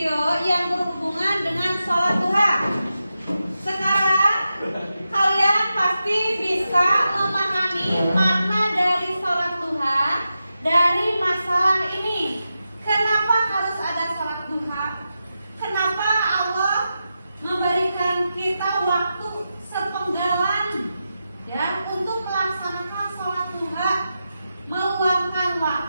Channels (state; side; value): inverted; both; correlation -0.90